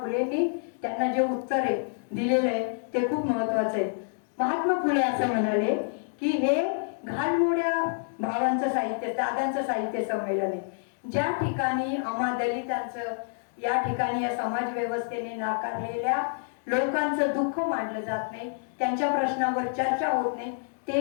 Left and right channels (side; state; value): right; silent; digital silence